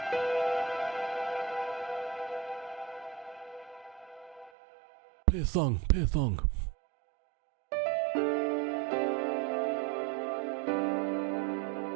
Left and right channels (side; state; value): left; drops out; at 4.5 s